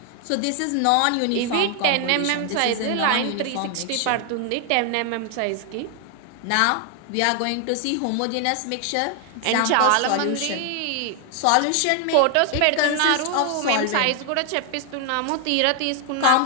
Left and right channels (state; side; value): different; both; correlation 0.00